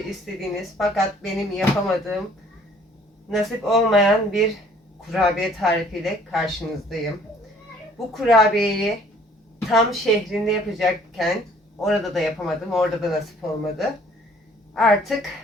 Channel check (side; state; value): both; normal; correlation 0.57